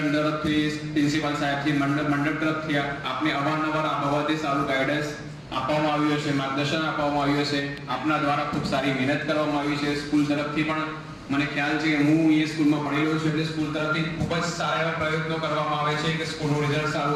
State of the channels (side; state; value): both; identical; correlation 1.00